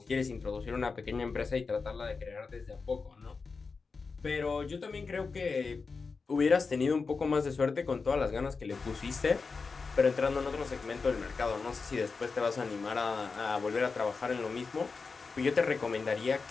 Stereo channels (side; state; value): right; quieter; 4.6 dB